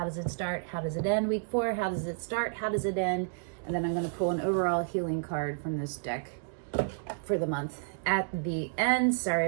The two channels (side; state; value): left; silent; digital silence